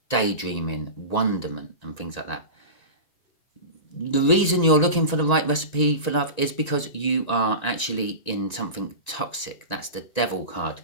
daydreaming, wonderment, and things like that. The reason you're looking for the right recipe for love is because you are actually in something toxic. That's the Devil card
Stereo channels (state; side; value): late; right; 1.9 ms